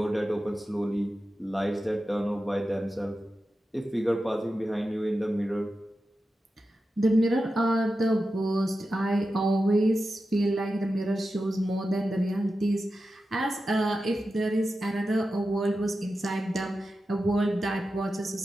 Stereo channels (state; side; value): normal; both; correlation 0.91